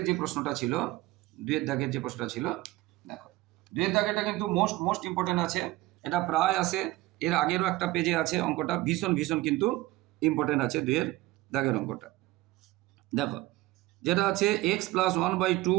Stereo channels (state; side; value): quieter; left; 18.7 dB